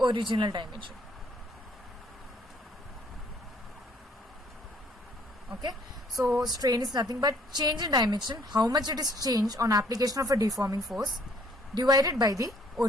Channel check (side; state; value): both; normal; correlation 0.62